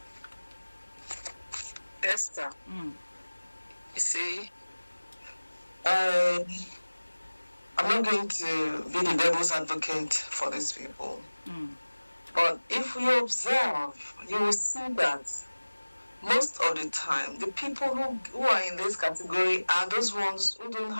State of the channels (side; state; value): both; inverted; correlation -1.00